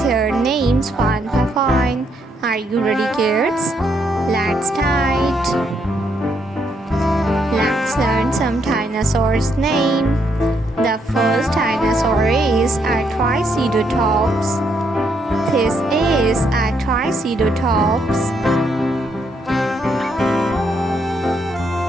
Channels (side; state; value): both; normal; correlation 0.74